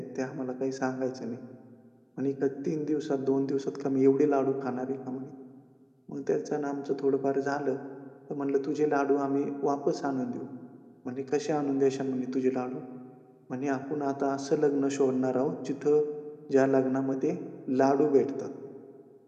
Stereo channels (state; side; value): identical; both; correlation 1.00